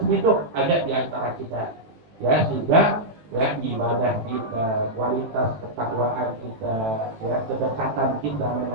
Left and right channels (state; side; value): late; left; 18 ms